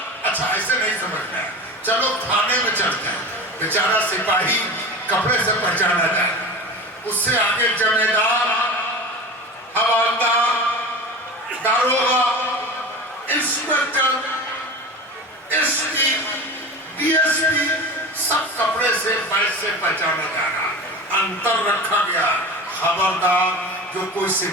اچھا ایسے نہیں سمجھنا ہے، چلو تھانے میں چلتے ہیں، بیچارہ سپاہی کپڑے سے پہچانا جائے، اس سے آگے جمیدار، حوالدار، داروغہ، inspector, S P, D S P, سب کپڑے سے بیچ سے پہچانا جانا۔ انتر رکھا گیا، خبردار جو کوئی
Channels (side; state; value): both; normal; correlation 0.32